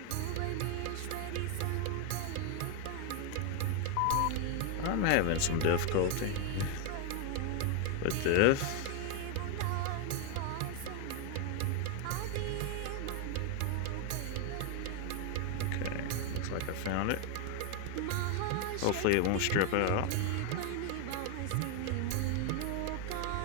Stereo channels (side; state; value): both; different; correlation 0.01